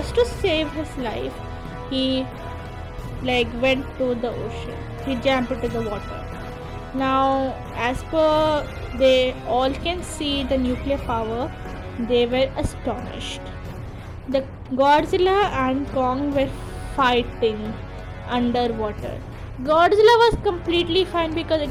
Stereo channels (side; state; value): both; identical; correlation 1.00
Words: to save his life he went to the ocean. He jumped into the water. Now as per they all can see the nuclear power, they were astonished. The Godzilla and Kong were fighting underwater. Godzilla was completely fine because